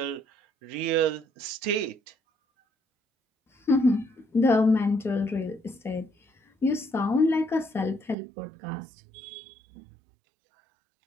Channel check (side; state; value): left; drops out; at 8.2 s